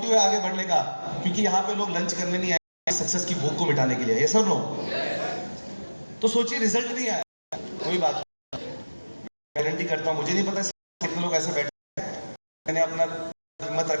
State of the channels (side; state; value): both; inverted; correlation -1.00